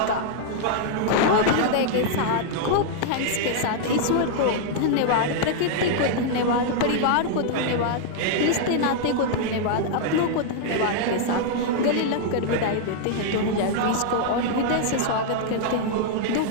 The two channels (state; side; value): different; both; correlation -0.01